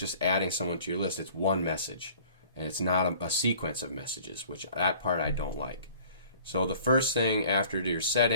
adding someone to your list. It's one message, and it's not a sequence of messages, which that part I don't like. So the first thing after your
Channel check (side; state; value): both; inverted; correlation -0.51